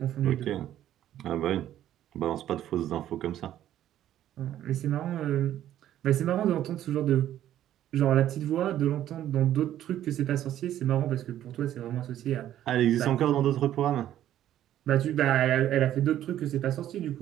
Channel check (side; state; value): left; quieter; 12.0 dB